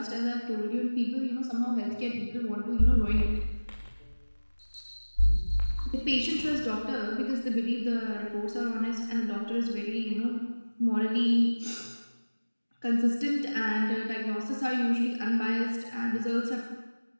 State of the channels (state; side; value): inverted; both; correlation -1.00